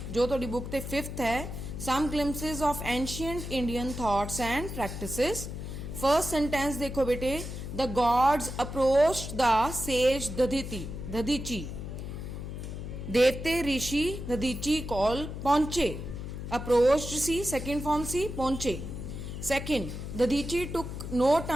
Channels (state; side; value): noise; left; hum, 7 dB below the sound